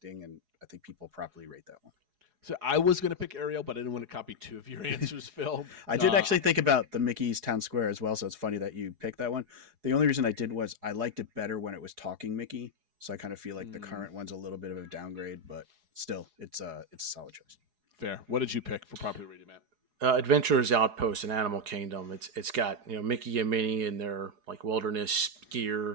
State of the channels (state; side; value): late; left; 4.8 ms